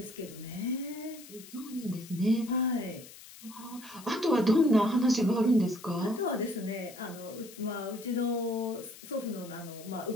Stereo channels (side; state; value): left; noise; hiss, 18 dB below the sound